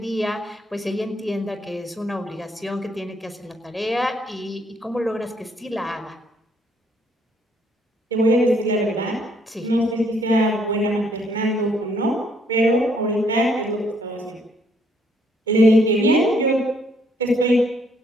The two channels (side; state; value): both; normal; correlation 0.68